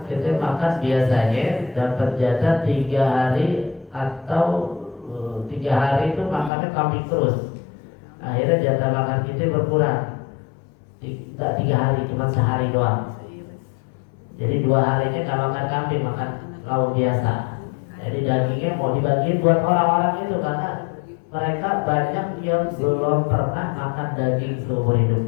kita makan biasanya dapat jatah 3 hari atau 3 hari itu makannya kambing terus. Akhirnya jatah makan kita berkurang. Tidak 3 hari, cuma sehari doang. Jadi 2 harinya nggak makan kambing, makan lauk biasa. Jadi dagingnya mau dibagiin buat orang-orang itu karena mereka banyak yang belum pernah makan daging seumur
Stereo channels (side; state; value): right; drops out; at 6.5 s